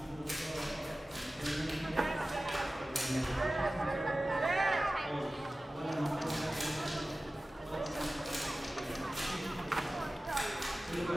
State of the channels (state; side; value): normal; both; correlation 0.96